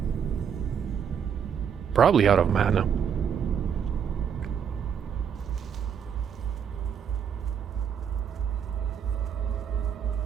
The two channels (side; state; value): left; quieter; 7.7 dB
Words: Probably out of mana.